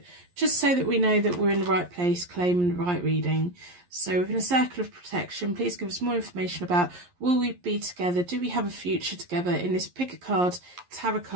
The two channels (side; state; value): left; late; 11 ms